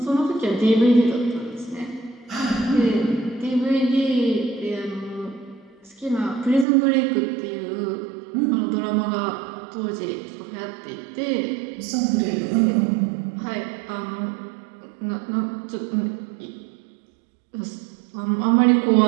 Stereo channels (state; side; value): drops out; left; at 6.7 s